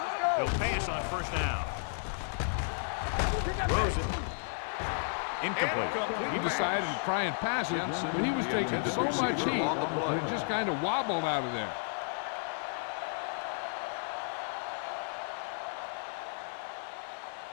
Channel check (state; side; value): silent; right; digital silence